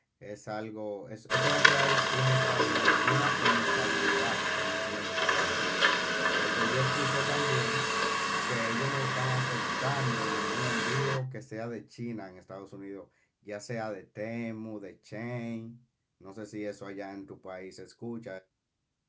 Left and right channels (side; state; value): both; identical; correlation 1.00